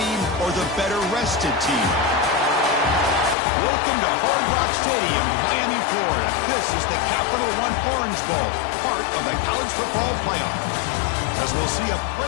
or the better-rested team? Welcome to Hard Rock Stadium, Miami, Florida. This is the Capital One Orange Bowl, part of the college football playoff. As we'll see a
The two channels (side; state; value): right; drops out; at 3.4 s